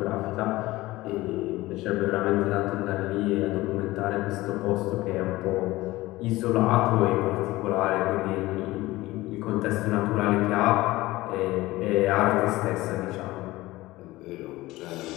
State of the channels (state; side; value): quieter; right; 18.7 dB